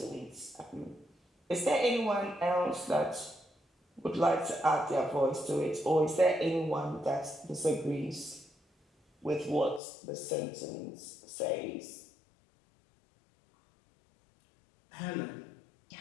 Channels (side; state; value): right; drops out; at 9.8 s